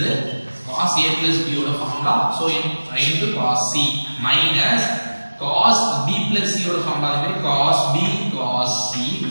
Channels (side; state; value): both; inverted; correlation -1.00